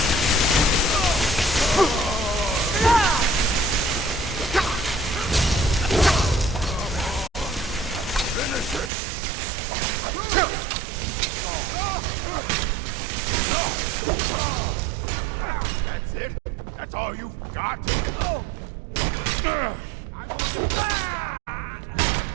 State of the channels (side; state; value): left; drops out; at 8.9 s